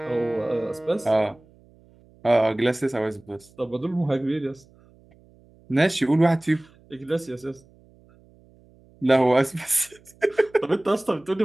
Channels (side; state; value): right; noise; hum, 28 dB below the sound